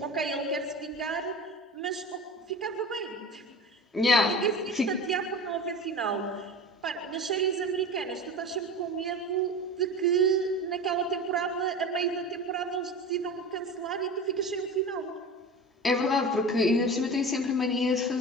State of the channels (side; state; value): both; normal; correlation 0.32